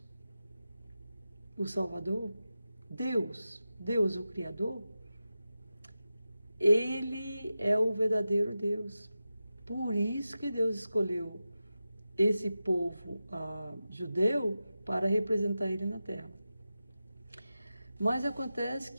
o Salvador, Deus o Criador, ele é o verdadeiro Deus. Por isso que Deus escolheu esse povo judeu para representar ele na terra. Mas acontece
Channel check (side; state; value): both; inverted; correlation -0.92